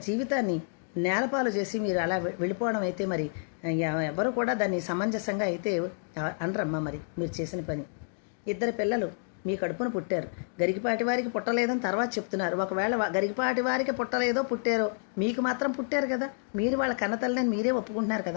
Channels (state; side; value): silent; right; digital silence